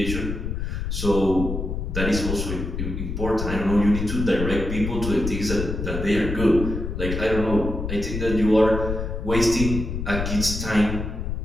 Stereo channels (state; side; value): noise; left; rumble, 4 dB below the sound